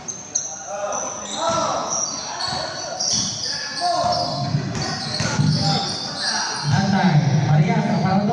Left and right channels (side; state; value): both; identical; correlation 1.00